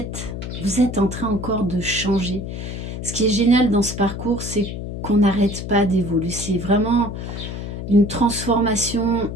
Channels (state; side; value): noise; left; hum, 7 dB below the sound